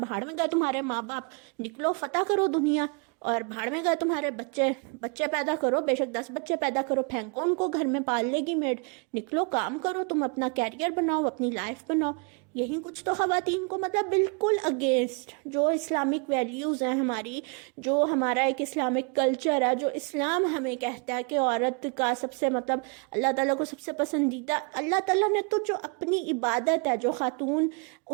میں گیا تمہارے ماں باپ، نکلو فتح کرو دنیا۔ اور بھاڑ میں گئے تمہارے بچے پیدا کرو، بے شک 10 بچے پیدا کرو، پھینکو ان کو، گھر میں پال لے گی میڈ، نکلو کام کرو، تم اپنا کیریئر بناؤ، اپنی لائف بناؤ۔ یہی کچھ تو خواتین کو مطلب بالکل اگینسٹ جو اسلامک ویلیوز ہیں ہماری، جو ہمارا ایک اسلامک کلچر ہے، جو اسلام ہمیں کہتا ہے کہ عورت کا سب سے مطلب اللہ تعالیٰ کو سب سے پسندیدہ، اللہ تعالیٰ نے تو جو اپنی عبادت ہے، جو خاتون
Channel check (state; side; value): quieter; left; 36.8 dB